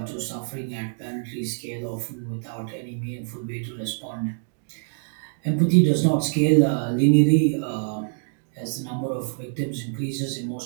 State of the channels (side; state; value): left; silent; digital silence